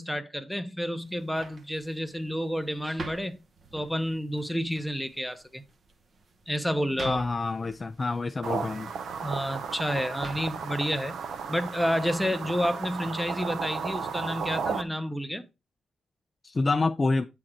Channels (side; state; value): both; normal; correlation 0.92